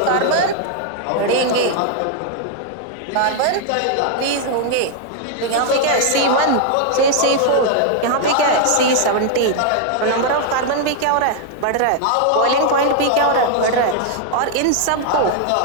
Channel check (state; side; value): different; both; correlation 0.00